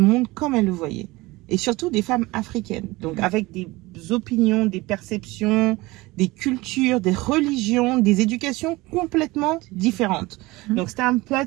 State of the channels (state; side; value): quieter; left; 21.1 dB